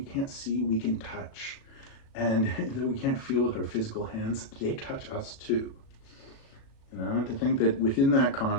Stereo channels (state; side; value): late; right; 37 ms